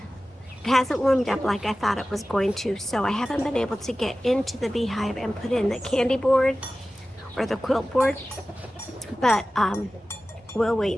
hasn't warmed up like I thought it was going to, so I haven't been able to get into the beehive and put in the candy board or the quilt board. But we'll wait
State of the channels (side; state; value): both; normal; correlation 0.96